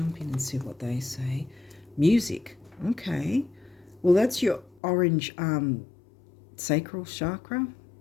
in and see what they say. Music, okay. Well, that's your orange sacral chakra.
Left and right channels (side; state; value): right; drops out; at 4.8 s